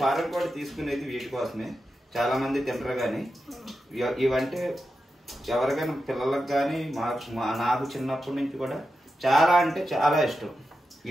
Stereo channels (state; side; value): normal; both; correlation 0.90